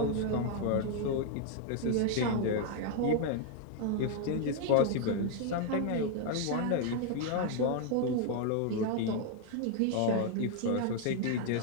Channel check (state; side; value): different; both; correlation 0.00